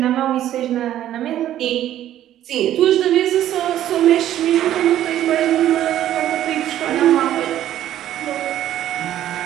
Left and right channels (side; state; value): left; quieter; 12.2 dB